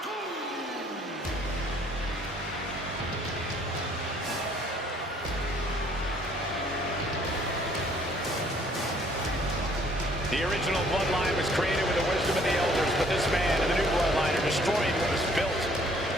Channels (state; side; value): normal; both; correlation 0.61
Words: The original Bloodline was created with the wisdom of the elders, but this man and the new Bloodline are destroying what was built.